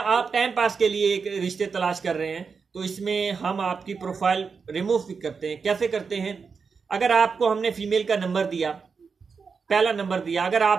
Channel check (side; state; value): left; quieter; 5.4 dB